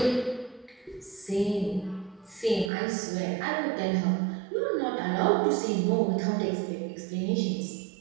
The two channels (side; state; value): left; drops out; at 2.7 s